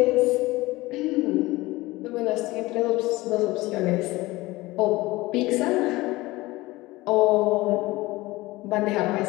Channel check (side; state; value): right; quieter; 20.1 dB